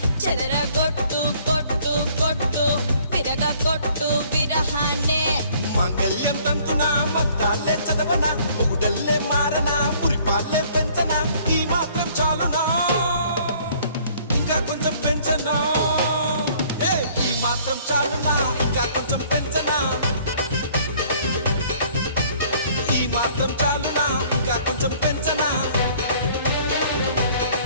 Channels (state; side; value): inverted; both; correlation -0.58